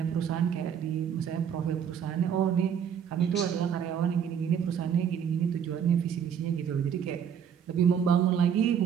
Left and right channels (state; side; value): quieter; left; 8.0 dB